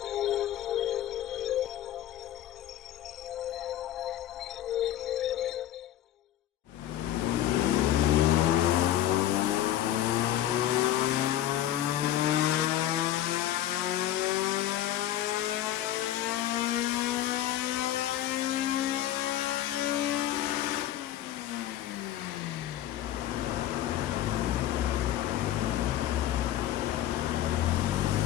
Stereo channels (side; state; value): right; quieter; 12.6 dB